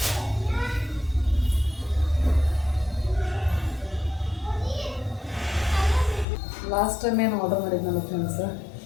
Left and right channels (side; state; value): right; drops out; at 6.2 s